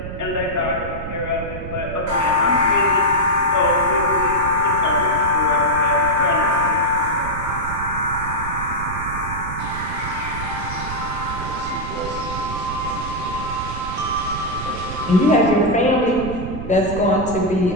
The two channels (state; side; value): noise; right; rumble, 8 dB below the sound